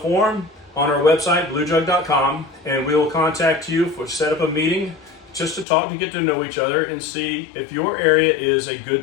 on our website, bluejug.com, and we will contact you for set up a meeting just to talk and get to know each other and see if your area is a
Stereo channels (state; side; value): drops out; right; at 5.7 s